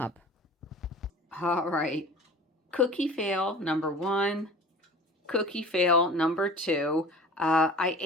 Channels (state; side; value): normal; both; correlation 0.41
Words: All right. Cookie fail number 1. Cookie fail number 2. I